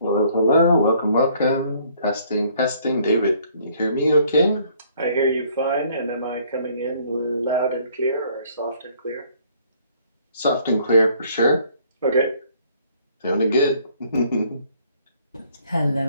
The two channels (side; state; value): both; inverted; correlation -0.62